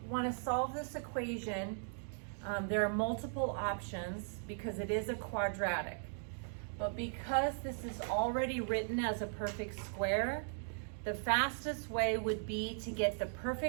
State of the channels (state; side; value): silent; left; digital silence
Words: want to solve this equation, there are multiple options because it is a quadratic. But because this is already written as a perfect square, the fastest way would be to get the